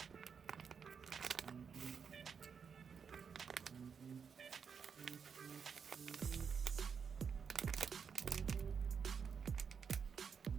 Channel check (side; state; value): left; quieter; 6.4 dB